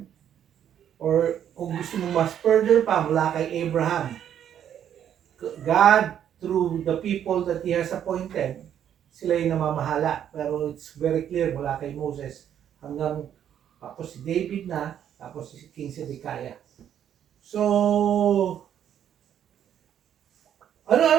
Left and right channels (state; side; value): quieter; left; 9.7 dB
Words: Or kung gusto mo mas further pa, mula kay Abraham. God, through the people that He has appointed, sila yung namamahala. Pero it's very clear mula kay Moses hanggang tapos si David na, tapos si King Zedekiah. So,